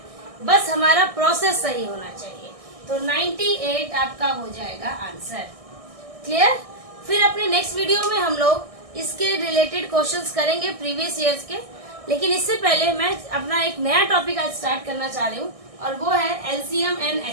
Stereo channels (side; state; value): left; late; 1.6 ms